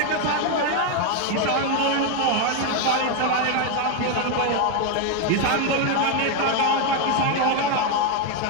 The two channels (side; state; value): both; different; correlation 0.01